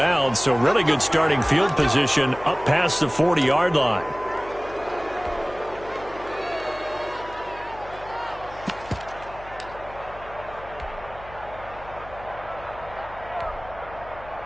so really good starting field position up past the 40-yard line.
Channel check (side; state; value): left; noise; hum, 18 dB below the sound